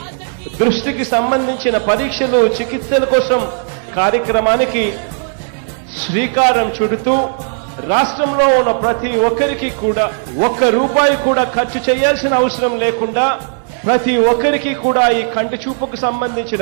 దృష్టికి సంబంధించిన పరీక్షలు చికిత్సల కోసం కార్యక్రమానికి శ్రీకారం చుడుతూ రాష్ట్రంలో ఉన్న ప్రతి ఒక్కరికి కూడా ₹1 కూడా ఖర్చు చేయాల్సిన అవసరం లేకుండా ప్రతి ఒక్కరికి కూడా ఈ కంటి చూపుకు సంబంధించిన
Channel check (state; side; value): silent; left; digital silence